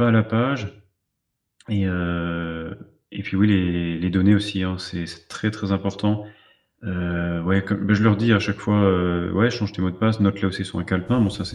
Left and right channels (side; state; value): both; identical; correlation 1.00